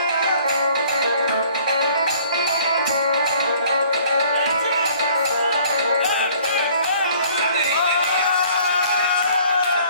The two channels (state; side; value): inverted; both; correlation -0.56